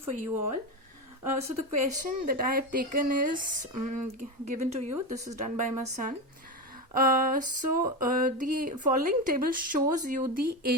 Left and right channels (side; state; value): both; normal; correlation 0.17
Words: you all. So the question that I have taken is given to you. This is done by my son. The following table shows you the